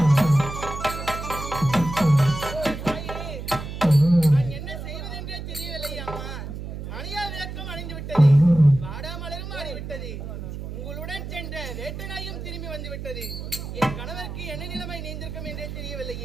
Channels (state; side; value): noise; right; hum, 8 dB below the sound